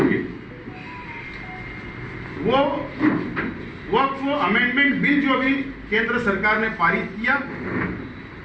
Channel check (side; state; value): both; identical; correlation 1.00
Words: वो वक्फ अमेंडमेंट बिल जो अभी केंद्र सरकार ने पारित किया,